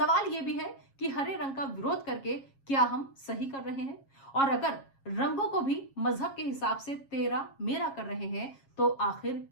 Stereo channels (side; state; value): right; late; 7.4 ms